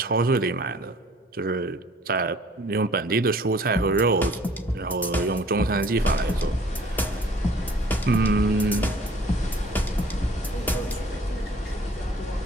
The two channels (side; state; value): both; normal; correlation 0.54